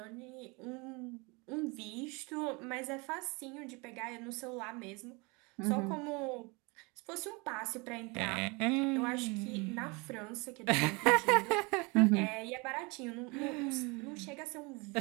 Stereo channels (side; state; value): left; quieter; 28.1 dB